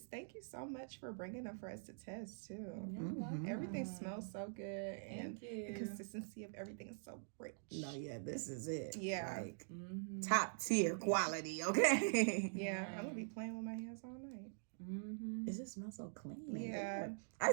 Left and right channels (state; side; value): silent; left; digital silence